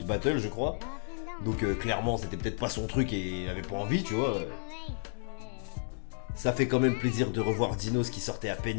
battles, je crois. Donc clairement, c'était peut-être pas son truc et il avait pas envie, tu vois. Ça fait quand même plaisir de revoir Dinos qui sortait à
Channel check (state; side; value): silent; right; digital silence